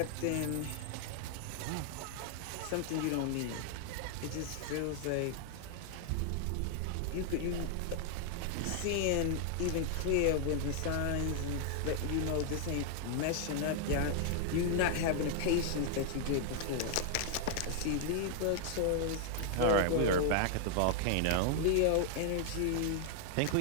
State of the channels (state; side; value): different; both; correlation 0.00